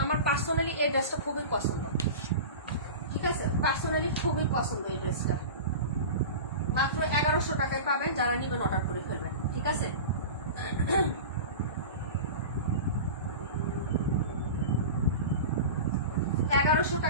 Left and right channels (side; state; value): both; inverted; correlation -0.31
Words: আমার পার্সোনালি এই ড্রেসটা খুবই পছন্দ, ঠিক আছে, পার্সোনালি খুবই পছন্দ এই ড্রেসটা। মাত্র 1100 টাকায় পাবেন, যারা নিবেন অর্ডার করে ফেলবেন, ঠিক আছে। 1100